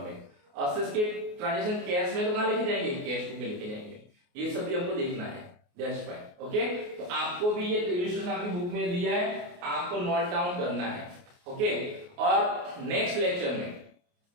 असेट्स के ट्रांजैक्शन कैश में तो कहां लिखे जाएंगे, कैश बुक में लिखे जाएंगे। ये सब भी हमको देखना है, दैट्स फाइन। ओके, तो आपको भी ये इलस्ट्रेशन आपकी बुक में दिया है, आपको नोट डाउन करना है। ओके, और नेक्स्ट लेक्चर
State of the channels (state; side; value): late; left; 28 ms